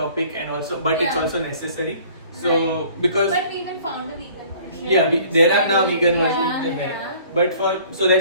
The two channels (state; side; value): inverted; both; correlation -0.53